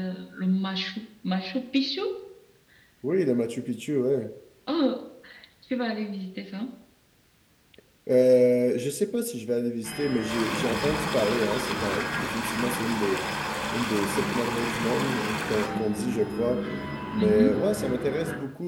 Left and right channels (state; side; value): identical; both; correlation 1.00